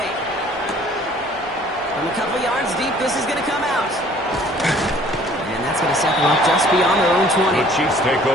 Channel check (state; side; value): normal; both; correlation 0.55